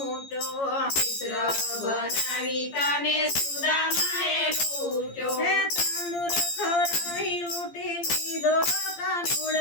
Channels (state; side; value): late; right; 14 ms